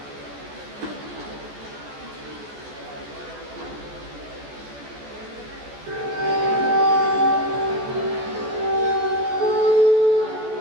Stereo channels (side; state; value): left; late; 13 ms